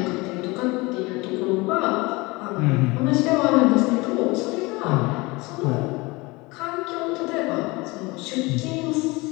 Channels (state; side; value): quieter; right; 23.9 dB